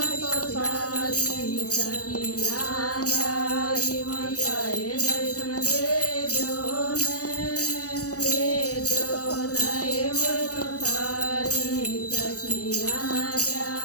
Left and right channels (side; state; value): right; late; 0.67 ms